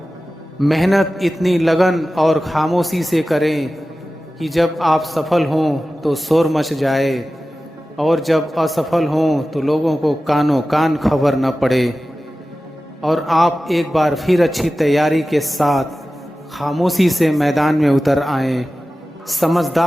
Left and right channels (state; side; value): normal; both; correlation 0.95